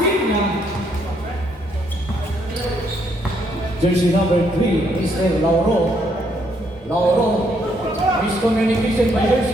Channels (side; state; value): both; normal; correlation 0.72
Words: Jersey number 3, Mr. Lauro. Lauro. Miscommunication by